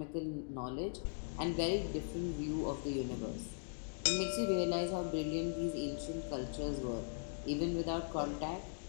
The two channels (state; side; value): silent; right; digital silence